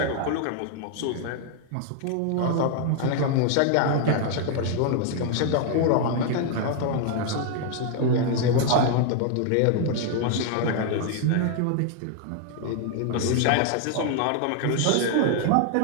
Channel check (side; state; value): both; different; correlation 0.00